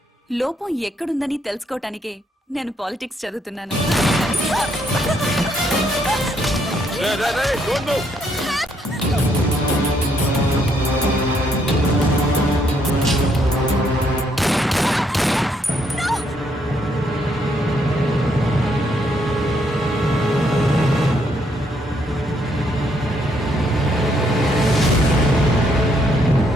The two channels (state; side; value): normal; both; correlation 0.72